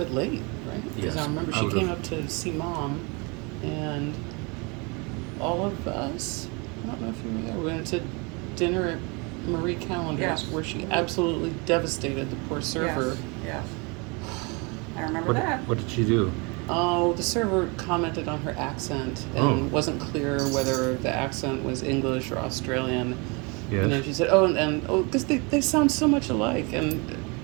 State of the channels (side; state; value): left; quieter; 30.1 dB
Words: late, right? Because Yes, I remember I she would've- came up to see Mom, and all of us. I don't know if you were there. We went to dinner at Marie Callender's Yes. where she absolutely devastated the poor server. Yes. I remember that. What did she do? Oh, the server commented on her accent and Oh. wasn't clear whether the accent was English or Australian. Yes. You know, she said, because they sound so much alike. And